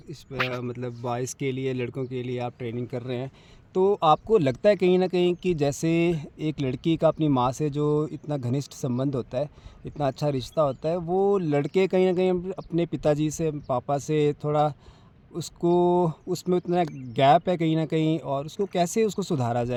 बॉयज़ के लिए, लड़कों के लिए आप ट्रेनिंग कर रहे हैं। तो आपको लगता है कहीं न कहीं कि जैसे एक लड़की का अपनी माँ से जो इतना घनिष्ठ संबंध होता है, इतना अच्छा रिश्ता होता है, वो लड़के कहीं न कहीं अपने पिताजी से, पापा से थोड़ा उसको उसमें उतना गैप है कहीं न कहीं, और उसको कैसे उसको सुधारा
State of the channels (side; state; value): both; identical; correlation 1.00